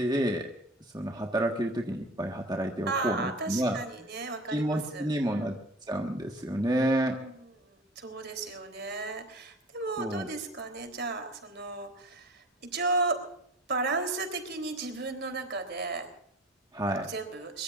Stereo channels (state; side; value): normal; both; correlation 0.41